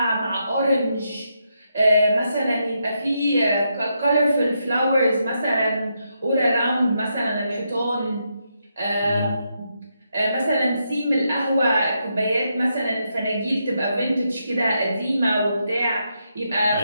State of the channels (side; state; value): both; inverted; correlation -0.81